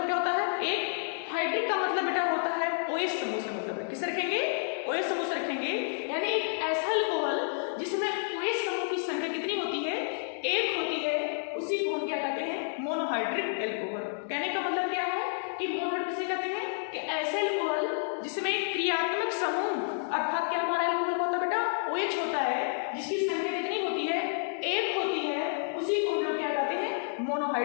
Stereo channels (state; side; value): silent; right; digital silence